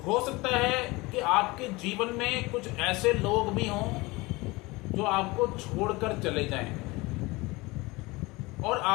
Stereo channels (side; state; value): right; quieter; 22.7 dB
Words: हो सकता है कि आपके जीवन में कुछ ऐसे लोग भी हों जो आपको छोड़कर चले जाएं और